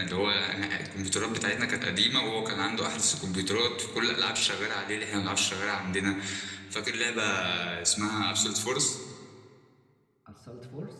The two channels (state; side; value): identical; both; correlation 1.00